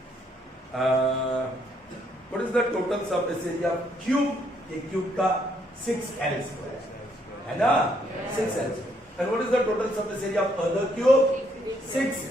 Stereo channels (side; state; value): both; normal; correlation 0.71